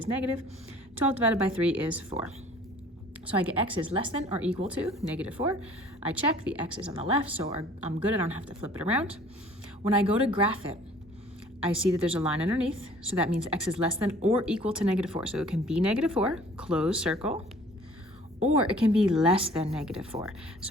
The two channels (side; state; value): both; normal; correlation 0.52